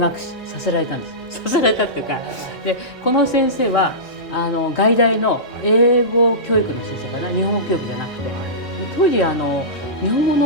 させられたんです。させられたっていうか、でこの先生は外大の英語教育の先生かな、日本語教育じゃなくて、当時日本語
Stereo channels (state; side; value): normal; both; correlation -0.19